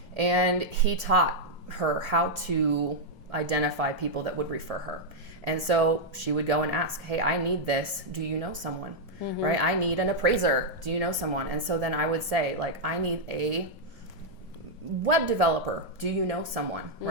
And he taught her how to identify people that would refer her. And so she would go and ask, hey, I need this. Do you know someone? Right? I need an appraiser. Do you know someone? And so then I would say, like, I need a web developer. Do you know someone?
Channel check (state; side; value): normal; both; correlation -0.03